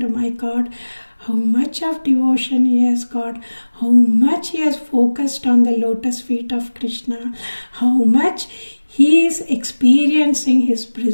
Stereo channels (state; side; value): inverted; both; correlation -1.00